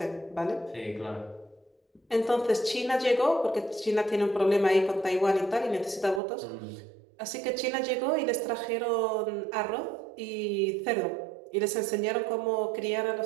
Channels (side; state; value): left; drops out; at 6.2 s